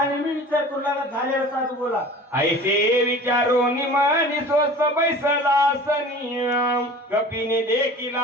मी विचार करू लागला झालेला साधू बोला ऐसे विचारून मनी स्वस्त बैसला सनियम कपिने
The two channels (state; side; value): normal; both; correlation 0.41